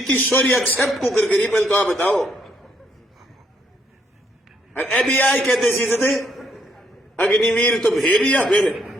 सॉरी एक्सेप्ट को कर करी, पहले तो आप बताओ। एबीआई कहते सीधे थे अग्निवीर तो भेड़िया, फिर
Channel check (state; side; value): normal; both; correlation 0.72